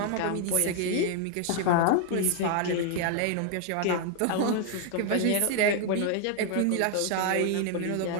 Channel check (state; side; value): different; both; correlation 0.00